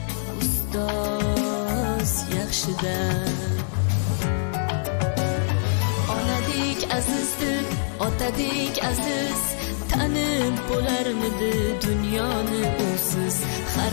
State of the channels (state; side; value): silent; right; digital silence